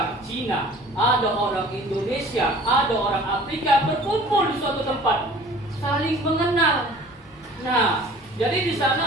Cina, ada orang Indonesia, ada orang Afrika berkumpul di suatu tempat, saling mengenal. Nah, jadi di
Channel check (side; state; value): both; normal; correlation 0.47